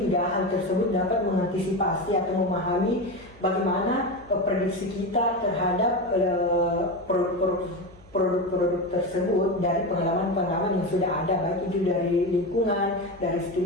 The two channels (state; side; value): noise; left; hum, 26 dB below the sound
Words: hal tersebut dapat mengantisipasi atau memahami bagaimana prediksi kita terhadap produk-produk tersebut dari pengalaman-pengalaman yang sudah ada, baik itu dari lingkungan, dari